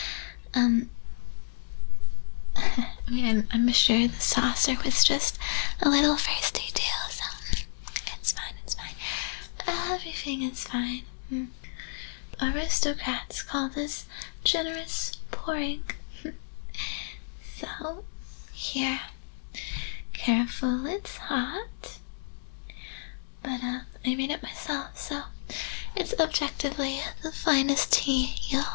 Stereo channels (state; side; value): silent; right; digital silence